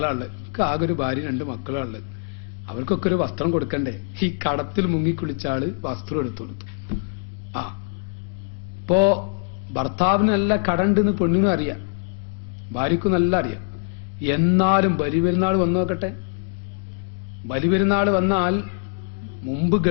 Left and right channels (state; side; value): quieter; right; 37.6 dB